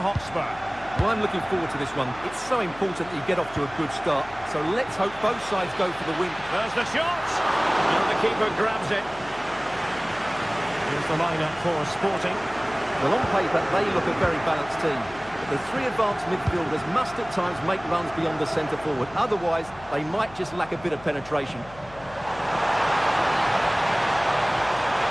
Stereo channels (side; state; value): left; noise; hum, 20 dB below the sound